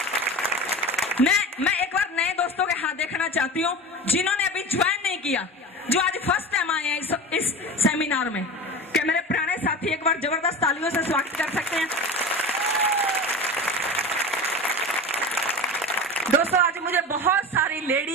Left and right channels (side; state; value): both; normal; correlation 0.30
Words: मैं एक बार नए दोस्तों के हाथ देखना चाहती हूँ जिन्होंने अभी ज्वाइन नहीं किया, जो आज फर्स्ट टाइम आए हैं इस सेमिनार में। क्या मेरे पुराने साथी एक बार जबरदस्त तालियों से स्वागत कर सकते हैं? दोस्तों आज मुझे बहुत सारी